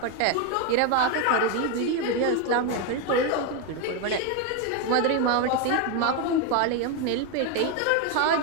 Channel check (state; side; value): different; both; correlation 0.02